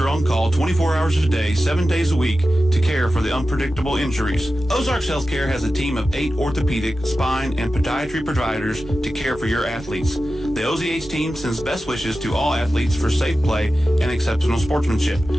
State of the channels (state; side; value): normal; both; correlation 0.93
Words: on call 24 hours a day, 7 days a week to care for the unpredictable injuries. Ozarks Healthcare has a team of 8 orthopedic, spine, and podiatry providers to care for your athletes. The OZH team sends best wishes to all athletes for safe play and exceptional sportsmanship.